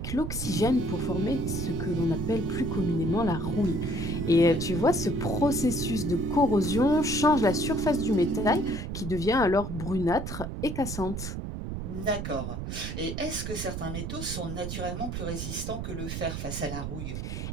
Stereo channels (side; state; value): right; noise; rumble, 5 dB below the sound